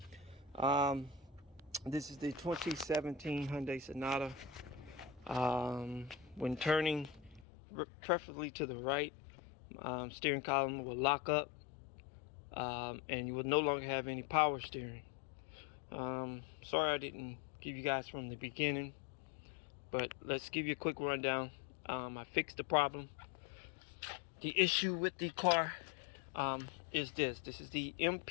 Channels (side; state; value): right; drops out; at 7.5 s